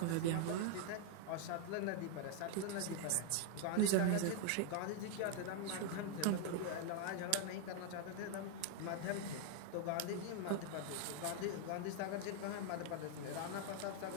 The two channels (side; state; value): both; different; correlation 0.00